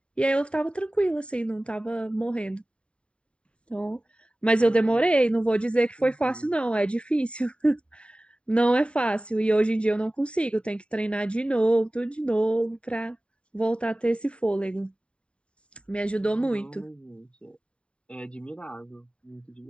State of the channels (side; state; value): right; late; 0.057 ms